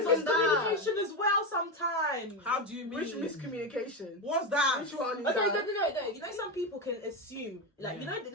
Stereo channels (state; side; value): normal; both; correlation 0.14